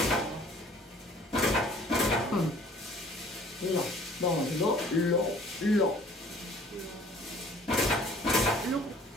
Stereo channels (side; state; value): both; normal; correlation 0.53